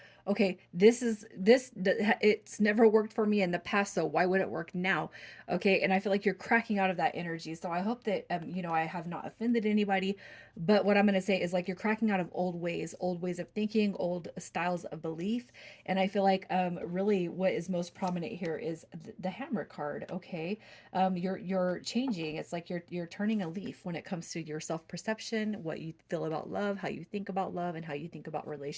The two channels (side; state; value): both; identical; correlation 1.00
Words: okay, it's never worked for me in the past, so why would it work now? Okay, and I feel like you're cracking out of that energy. So I hope that I have not offended anybody, but what I'm going to say is like you're cracking out of old ways of thinking, old styles of belief. And I feel like really what is most prominent here is the hammer card. Okay, you're changing. It's like you're turning a leaf when it comes to your self perception, what you feel about love, how you think about love, and how you think about